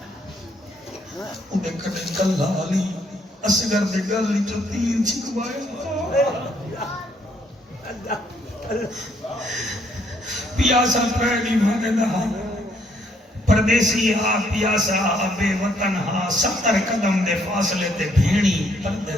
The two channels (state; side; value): normal; both; correlation 0.69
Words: انہیں کنے کلہ علی اصغر دے گل جو 3 چھکوایا، پیاسا پہلی مانے دہا پردیسی ہا پیاسا بے وطن ہا 70 قدم دے فاصلے تے بھیڑی پردے